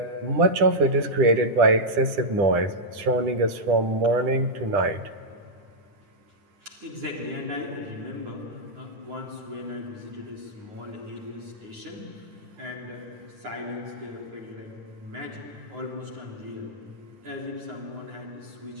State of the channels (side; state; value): left; late; 10 ms